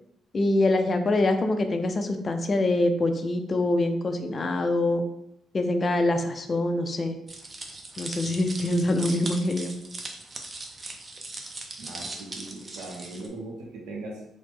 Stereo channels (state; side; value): normal; both; correlation 0.87